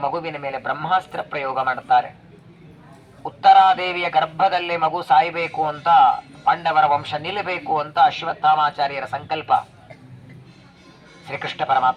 ಮಗುವಿನ ಮೇಲೆ ಬ್ರಹ್ಮಾಸ್ತ್ರ ಪ್ರಯೋಗ ಮಾಡುತ್ತಾರೆ. ಉತ್ತರಾದೇವಿಯ ಗರ್ಭದಲ್ಲಿ ಮಗು ಸಾಯಬೇಕು ಅಂತ, ಪಾಂಡವರ ವಂಶ ನಿಲ್ಲಬೇಕು ಅಂತ ಅಶ್ವತ್ಥಾಮಾಚಾರ್ಯರ ಸಂಕಲ್ಪ. ಶ್ರೀಕೃಷ್ಣ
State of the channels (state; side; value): identical; both; correlation 1.00